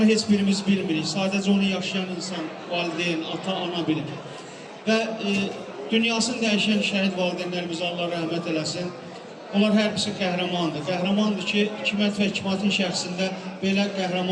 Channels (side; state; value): both; identical; correlation 1.00